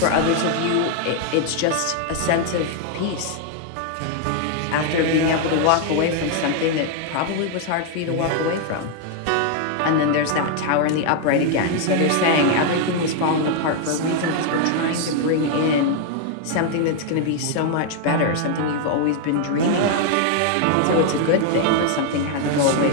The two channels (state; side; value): different; both; correlation 0.00